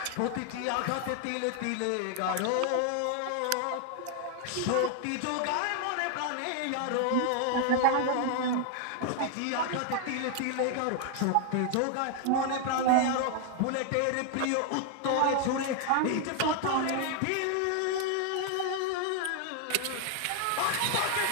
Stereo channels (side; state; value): both; different; correlation 0.00